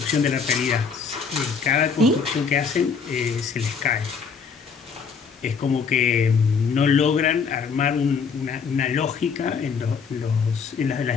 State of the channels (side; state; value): right; quieter; 5.8 dB